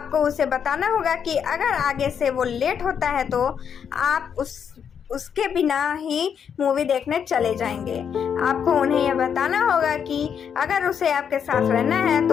उसे बताना होगा कि अगर आगे से वो लेट होता है तो आप उसके बिना ही मूवी देखने चले जाएंगे। आपको उन्हें यह बताना होगा कि अगर उसे आपके साथ रहना है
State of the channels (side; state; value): right; quieter; 7.7 dB